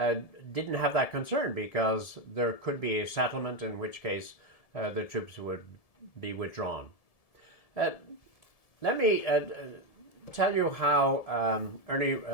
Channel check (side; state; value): right; late; 1.7 ms